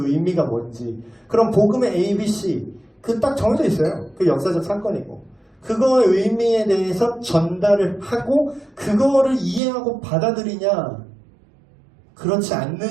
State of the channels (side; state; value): left; drops out; at 9.6 s